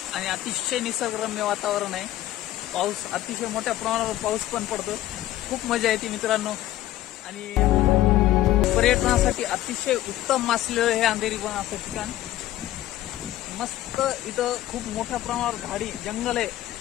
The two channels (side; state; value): right; quieter; 14.2 dB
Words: आणि अतिशय निसर्गरम्य वातावरण आहे। पाऊस अतिशय मोठ्या प्रमाणावर पाऊस पण पडतो, खूप मजा येते मित्रांनो। आणि पर्यटनासाठी अतिशय उत्तम असलेलं हे अंधेरी बन असं ठिकाण। मस्त इथं खूप मोठ्या प्रमाणावर झाडी जंगल आहे